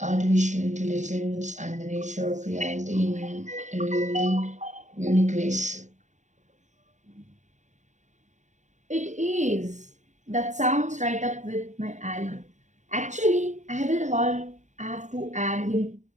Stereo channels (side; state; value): left; late; 0.35 ms